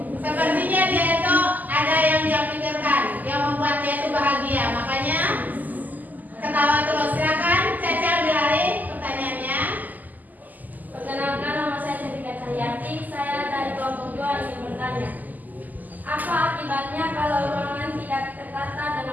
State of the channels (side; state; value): left; late; 0.082 ms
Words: sepertinya dia itu ada yang dia pikirkan yang membuat dia itu bahagia, makanya ketawa terus. Silakan Caca Bilari pertanyaannya. Perkenalkan, nama saya Sedika Cahyati. Saya dari kelompok 2 ingin bertanya. Apa akibatnya kalau ruangan tidak tertata